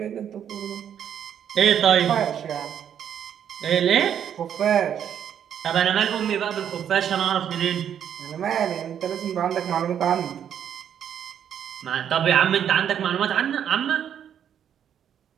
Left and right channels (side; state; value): left; quieter; 9.1 dB